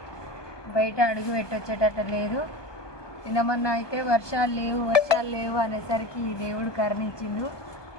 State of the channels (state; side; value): late; right; 1.2 ms